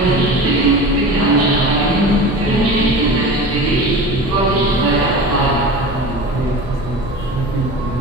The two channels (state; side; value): normal; both; correlation 0.33